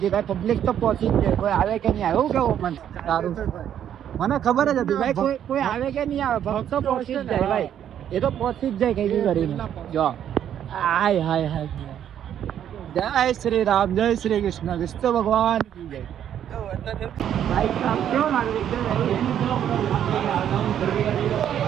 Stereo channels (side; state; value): left; quieter; 9.9 dB